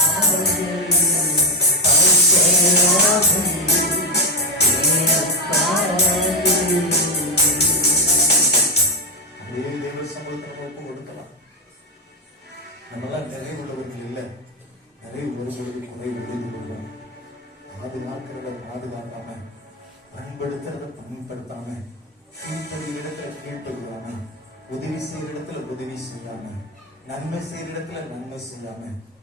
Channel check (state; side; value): normal; both; correlation 0.10